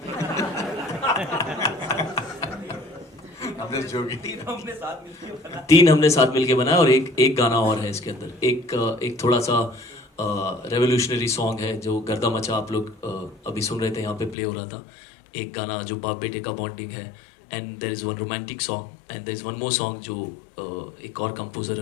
तीन हमने साथ मिलके बनाया और एक गाना और है इसके अंदर। एक थोड़ा सा रेवोल्यूशनरी सॉन्ग है जो गर्दा मचा आप लोग अभी सुन रहे थे, यहाँ पे प्ले हो रहा था। एक गाना जो बाप बेटे का बॉन्डिंग है, and there is one romantic song, and there is one more song जो एक और कंपोजर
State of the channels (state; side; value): drops out; right; at 14.4 s